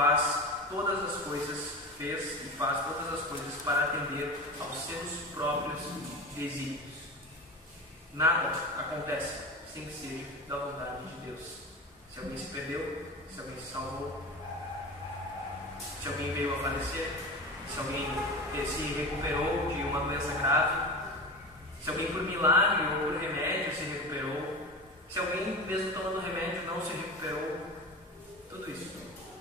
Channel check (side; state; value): both; normal; correlation 0.28